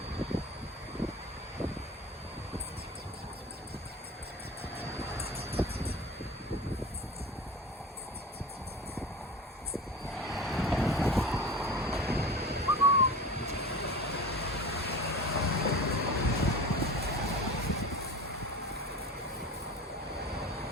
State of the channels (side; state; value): both; normal; correlation 0.34